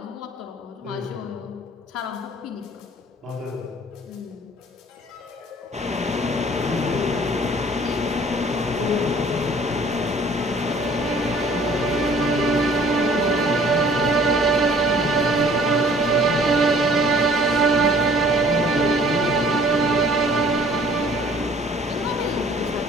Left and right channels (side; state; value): both; normal; correlation 0.54